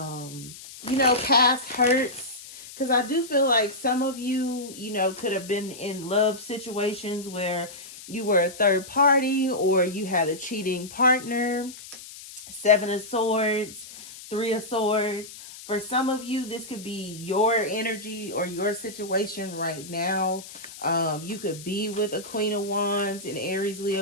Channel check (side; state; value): left; noise; hiss, 15 dB below the sound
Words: know, past hurts. Because I do feel like some of you, you know, could have been in love situations where you were a third party or you had a cheating partner. 7 of Swords, 3 of Swords. For some of you, this could be your energy or your situation right now. You could be with a Queen of Wands in Aries,